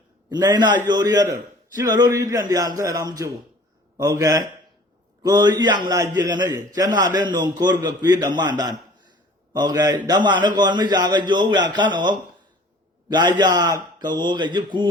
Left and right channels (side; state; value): both; normal; correlation 0.48